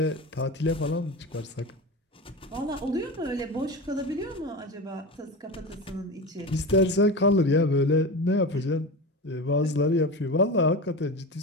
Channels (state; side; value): normal; both; correlation 0.26